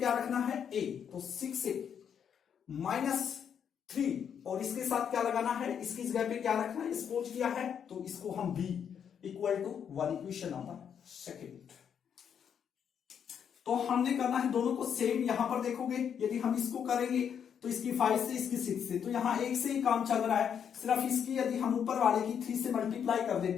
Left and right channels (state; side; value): quieter; right; 8.0 dB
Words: रखना है, a, तो 6a -3, और इसके साथ क्या लगाना है, इसकी जगह पे क्या रखना है, सपोज किया है, तो इसको हम b equal to 1, equation number second. तो हमने करना है दोनों को सेम। यहां पर देखोगे, यदि हम इसको करेंगे तो इसकी 5 से इसकी 6 से, तो यहां एक से ही काम चल रहा है। सिर्फ इसकी यदि हम ऊपर वाले की 3 से मल्टीप्लाई कर